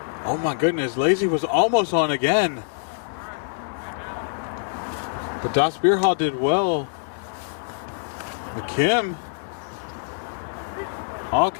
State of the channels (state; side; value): silent; right; digital silence